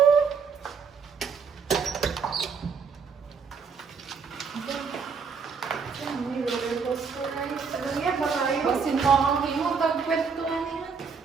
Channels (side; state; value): left; quieter; 5.7 dB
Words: Basin mo ang himo. Tagpwesto nga nila.